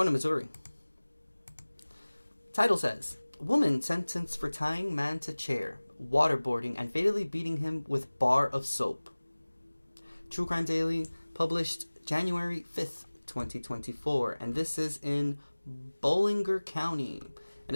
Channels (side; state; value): both; inverted; correlation -1.00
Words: to Missouri. Title says, woman sentenced for tying man to chair, waterboarding, and fatally beating him with bar of soap. True Crime Daily, published January 5th, 2024. And this is in Bollinger County. And